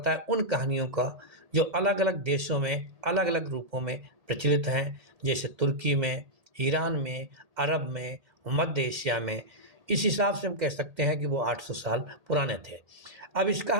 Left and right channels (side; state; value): left; late; 1.8 ms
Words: है उन कहानियों का जो अलग-अलग देशों में, अलग-अलग रूपों में प्रचलित हैं, जैसे तुर्की में, ईरान में, अरब में, मध्य एशिया में। इस हिसाब से हम कह सकते हैं कि वो 800 साल पुराने थे। अब इसका